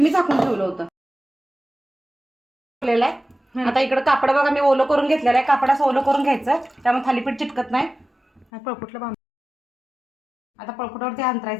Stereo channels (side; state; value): right; drops out; at 8.5 s